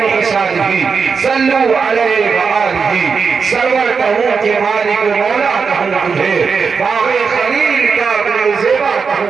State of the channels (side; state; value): left; quieter; 5.5 dB